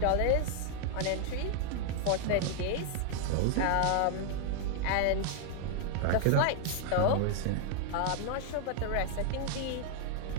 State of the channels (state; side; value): different; both; correlation 0.00